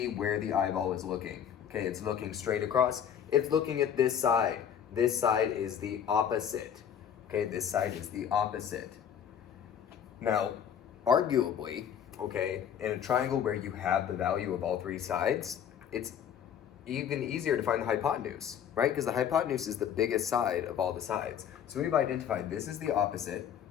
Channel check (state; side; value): quieter; right; 8.8 dB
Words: where the eyeball is looking. Okay, it's looking straight across. It's looking at this side. This side is the opposite. Okay, this side is the opposite. Now, arguably, okay, in a triangle where you have the value of all three sides, it's even easier to find the hypotenuse, right? Because the hypotenuse is the biggest side of all the sides. So we've identified this is the opposite.